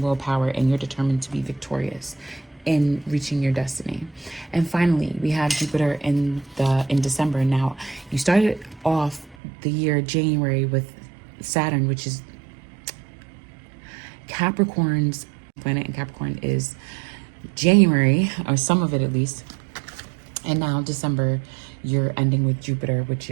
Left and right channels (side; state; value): left; drops out; at 9.3 s